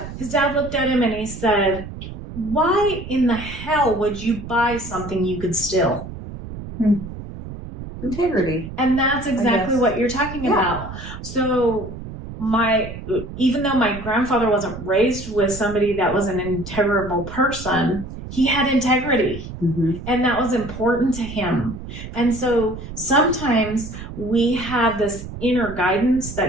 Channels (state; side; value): noise; right; rumble, 11 dB below the sound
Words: his dad looked at him, and he said, why in the hell would you buy something you could steal? Integrity. And that's exactly guess. what you're talking Yeah. about. So even though my grandfather wasn't raised with somebody that was an integrable person, he had integrity. Mm-hmm. And that was important to him. And so sometimes we have this inner guidance